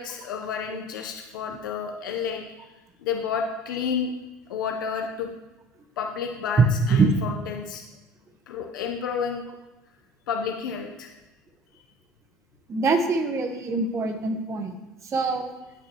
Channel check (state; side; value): normal; both; correlation 0.45